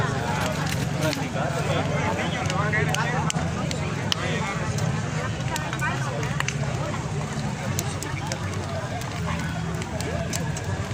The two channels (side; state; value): both; identical; correlation 1.00